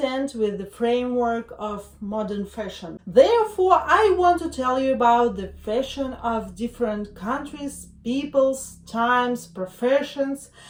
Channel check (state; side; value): identical; both; correlation 1.00